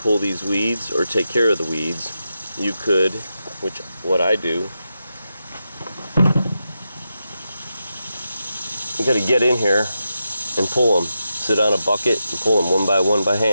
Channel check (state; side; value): inverted; both; correlation -0.88